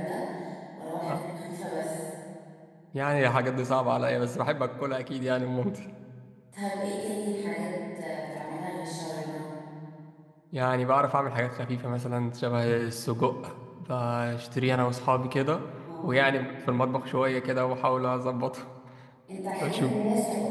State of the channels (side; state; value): both; identical; correlation 1.00